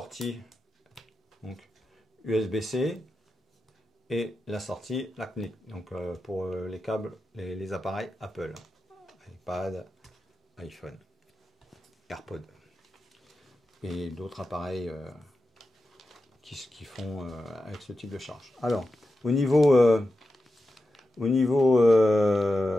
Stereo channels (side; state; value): both; normal; correlation 0.91